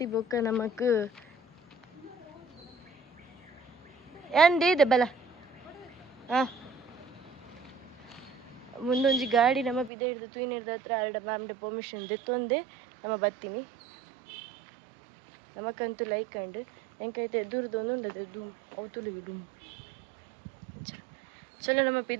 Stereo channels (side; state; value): left; drops out; at 9.9 s